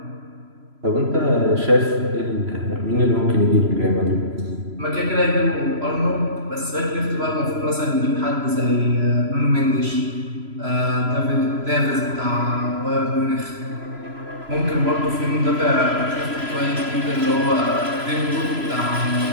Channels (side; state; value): left; late; 3.0 ms